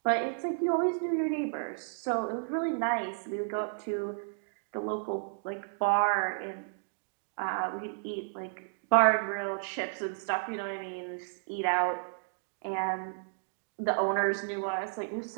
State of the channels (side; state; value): left; silent; digital silence